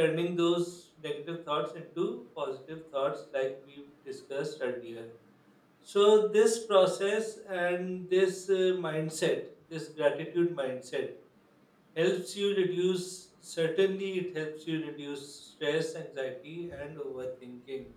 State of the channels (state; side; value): identical; both; correlation 1.00